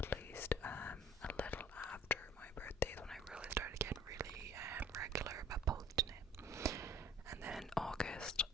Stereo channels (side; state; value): both; normal; correlation 0.51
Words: least, a little after my birthday, when I really started getting really regular about posting it. And then in August,